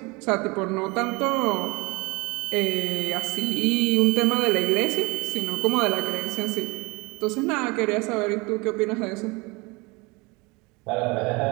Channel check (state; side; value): quieter; left; 26.1 dB